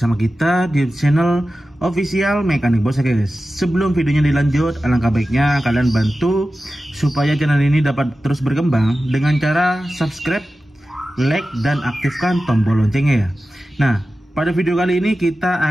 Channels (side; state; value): both; normal; correlation 0.94